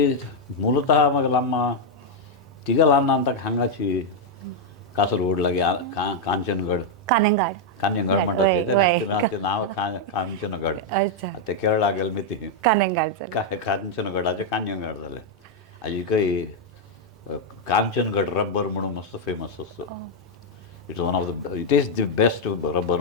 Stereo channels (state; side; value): normal; both; correlation -0.01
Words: मुलतः म्हगेलो अम्मा तिगे ल्हान ताका हांगाची कासरगोड लागीं कांचनगड कान्यंगड म्हणटा तें नांव कांचनगड. ते केरळा गेले मिती कांचनगडाचें कान्यंगड जालें. हाजीकय कांचनगड रब्बर म्हणून मस्त फेमस आसता. It one of the it is the best rubber